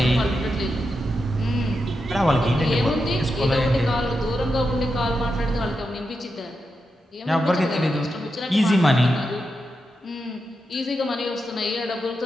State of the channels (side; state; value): both; normal; correlation 0.87